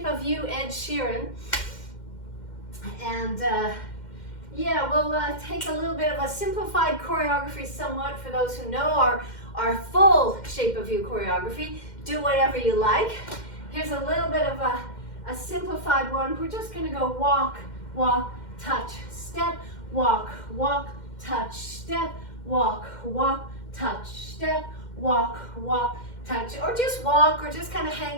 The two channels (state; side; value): late; right; 2.1 ms